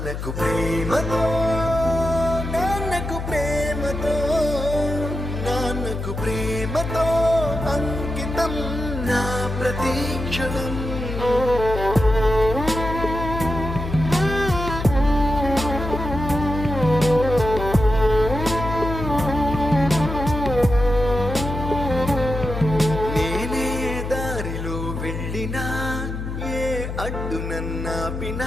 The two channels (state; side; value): noise; left; hum, 6 dB below the sound